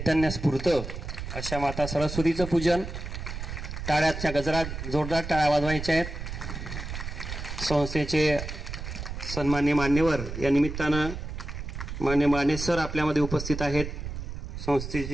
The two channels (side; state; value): right; noise; rumble, 7 dB below the sound